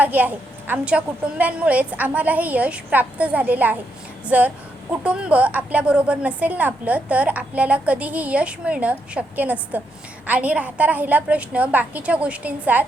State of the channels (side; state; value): both; normal; correlation 0.79